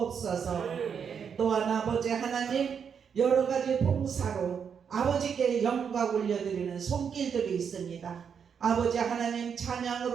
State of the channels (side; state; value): left; quieter; 7.1 dB